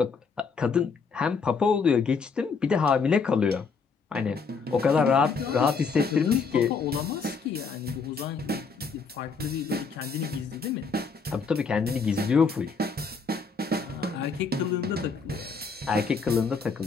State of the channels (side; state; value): right; quieter; 5.0 dB